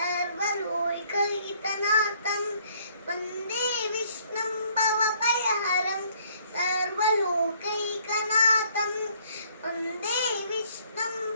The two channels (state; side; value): inverted; both; correlation -0.63